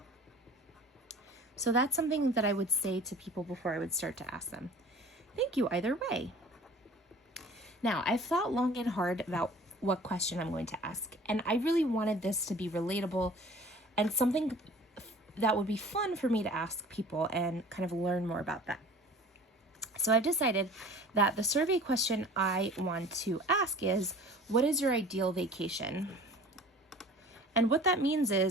So that's something that I would say to people before I would start to ask them. Thank you either way. Now, I've thought long and hard about what question I'm going to ask, and I really wanted this to be relatable and something that would be fun for me to ask people and kind of learn more about that. So I've decided that the survey question I want to ask is, what is your ideal vacation? And what that means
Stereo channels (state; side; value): normal; both; correlation 0.45